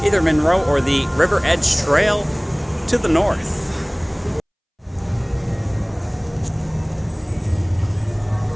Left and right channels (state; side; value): identical; both; correlation 1.00